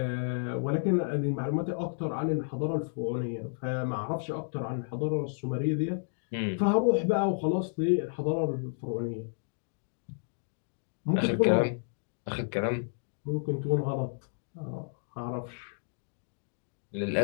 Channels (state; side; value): silent; right; digital silence